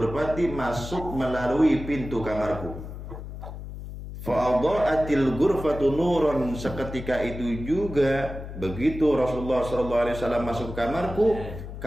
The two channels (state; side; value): noise; left; hum, 10 dB below the sound